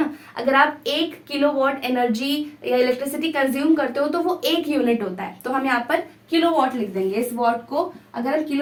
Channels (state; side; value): identical; both; correlation 1.00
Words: अगर आप 1 किलो वॉट एनर्जी या इलेक्ट्रिसिटी कंज्यूम करते हो तो वो 1 यूनिट होता है, तो हम यहाँ पर किलो वॉट लिख देंगे। इस वॉट को अगर हम